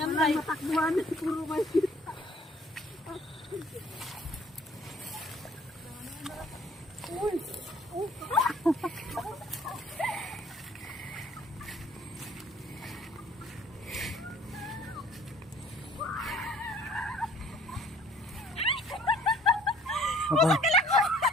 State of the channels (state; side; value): normal; both; correlation 0.56